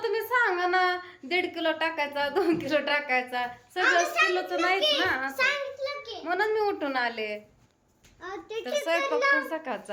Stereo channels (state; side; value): identical; both; correlation 1.00